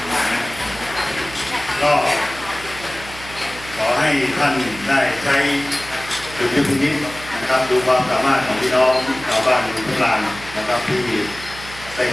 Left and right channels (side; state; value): right; noise; hum, 15 dB below the sound